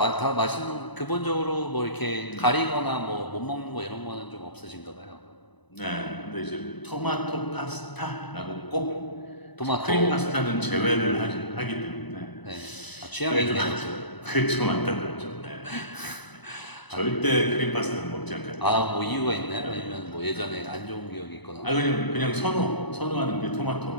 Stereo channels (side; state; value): right; late; 1.0 ms